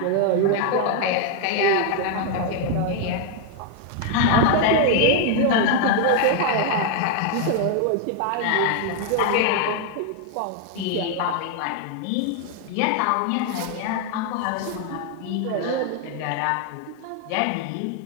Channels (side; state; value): both; different; correlation 0.01